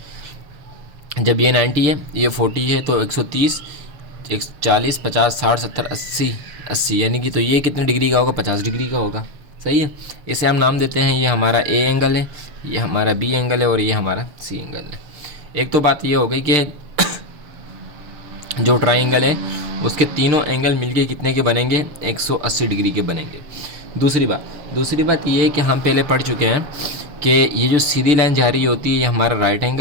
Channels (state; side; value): late; left; 7.1 ms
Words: जब ये 90 है, ये 40 है, तो 130, 140, 50, 60, 70, 80 यानी कि तो ये कितने डिग्री का होगा? 50 डिग्री का होगा। सही है, इसे हम नाम देते हैं, ये हमारा ए एंगल है, ये हमारा बी एंगल है और ये हमारा सी एंगल है। एक तो बात ये हो गई कि जो ट्राइंगल है उसके तीनों एंगल मिलके कितने के बनेंगे? 180 डिग्री के बनेंगे। दूसरी बात ये है कि हम पहले पढ़ चुके हैं कि ये जो सीधी लाइन जा रही होती है ये हमारा राइट